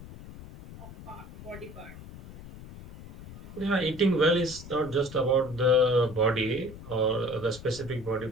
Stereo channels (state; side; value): noise; left; rumble, 15 dB below the sound